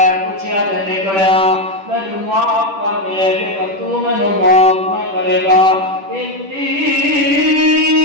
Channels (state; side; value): late; left; 10 ms